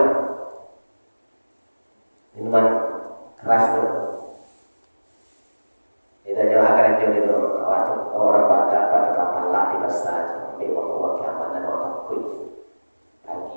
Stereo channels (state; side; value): inverted; both; correlation -1.00